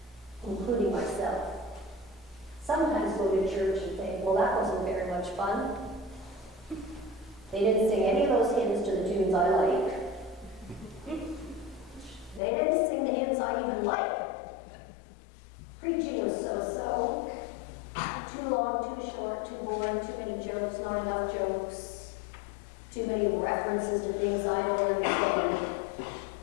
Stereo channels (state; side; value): drops out; right; at 12.4 s